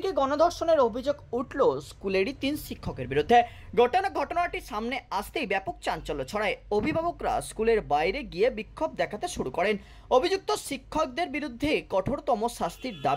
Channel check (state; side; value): identical; both; correlation 1.00